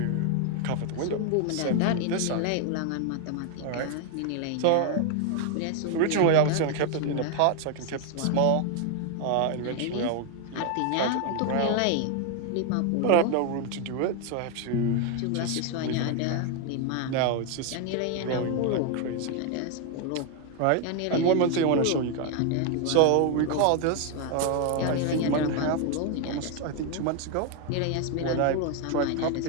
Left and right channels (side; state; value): both; different; correlation 0.01